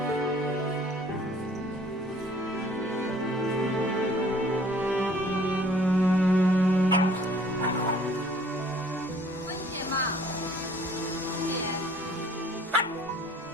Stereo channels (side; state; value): both; normal; correlation 0.56